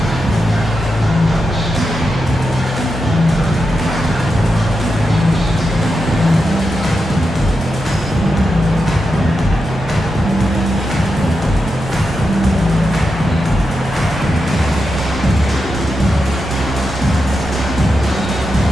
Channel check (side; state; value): both; normal; correlation 0.87